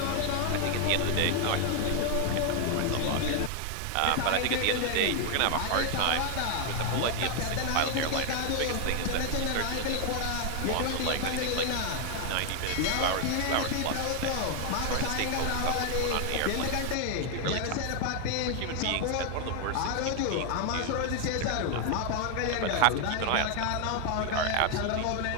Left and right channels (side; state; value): both; different; correlation 0.00